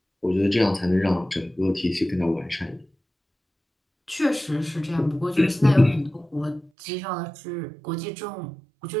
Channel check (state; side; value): drops out; left; at 6.7 s